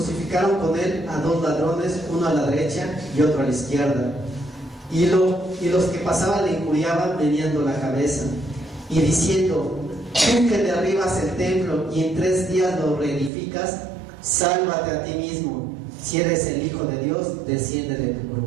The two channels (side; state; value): left; drops out; at 13.3 s